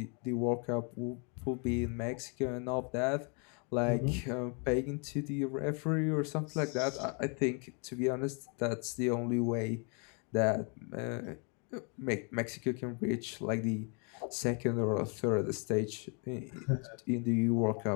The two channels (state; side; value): quieter; right; 36.9 dB